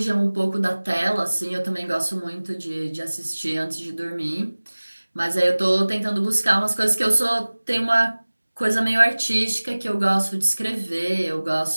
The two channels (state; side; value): inverted; both; correlation -1.00